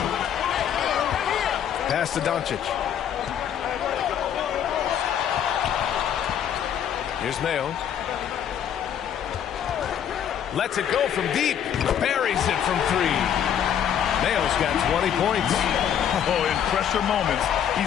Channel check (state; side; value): quieter; right; 9.2 dB